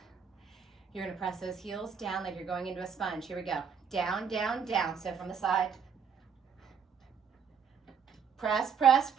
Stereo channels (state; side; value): quieter; left; 6.8 dB